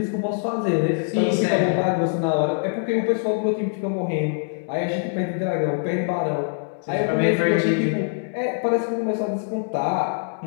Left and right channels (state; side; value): silent; right; digital silence